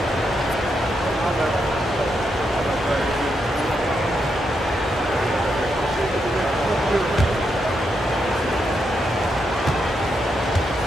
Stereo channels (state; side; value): normal; both; correlation 0.82